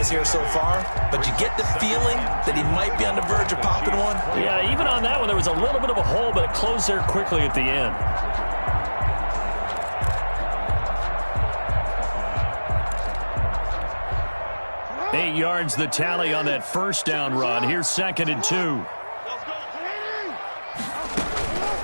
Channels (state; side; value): inverted; both; correlation -1.00